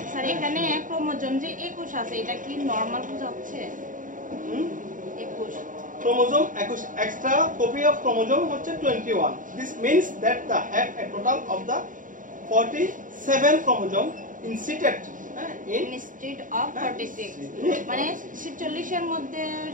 স্যার এখানে ক্রোমোজোম যে 21 আছে এটা কি নরমাল বোঝাচ্ছে? 21 chromosome 21, extra copy of chromosome হচ্ছে 21. This means that the have a total of the 47 chromosome inserted instead of 46 মানে 46 এর মধ্যে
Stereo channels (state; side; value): late; left; 0.38 ms